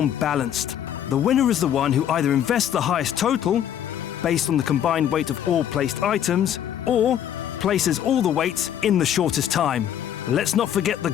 balanced. The winner is the one who either invests the highest total, based on the combined weight of all placed items, or places all the weights in the shortest time. Let's not forget the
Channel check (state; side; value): quieter; right; 10.0 dB